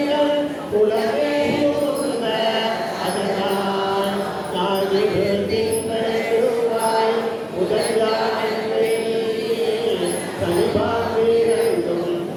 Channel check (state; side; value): identical; both; correlation 1.00